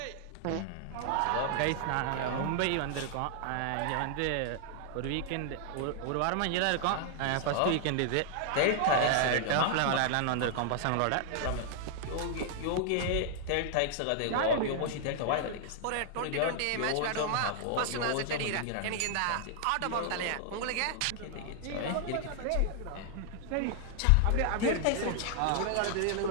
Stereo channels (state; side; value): different; both; correlation 0.00